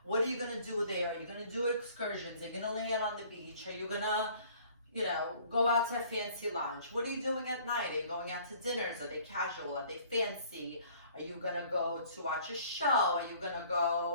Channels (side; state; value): both; inverted; correlation -0.55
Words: What are you going to do there? Are you going to do excursions? Are you going to lay out on the beach? Are you going to go out to a fancy lunch? What are you doing at night? Are you going out to dinners? Are they casual? Are they fancy? Are you gonna go to watch a show? Are you gonna